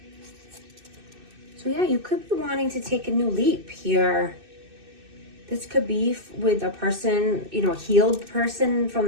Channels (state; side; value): late; left; 2.6 ms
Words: So yeah, you could be wanting to take a new leap here. This could be with a person, you know, a healed person from